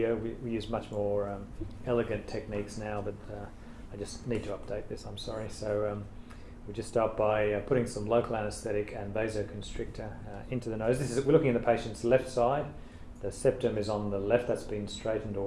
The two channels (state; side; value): identical; both; correlation 1.00